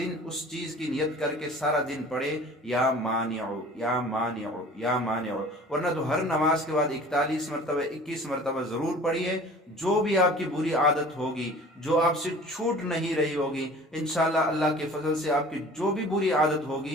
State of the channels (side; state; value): both; normal; correlation 0.45